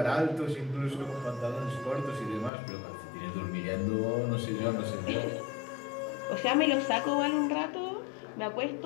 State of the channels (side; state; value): right; drops out; at 2.5 s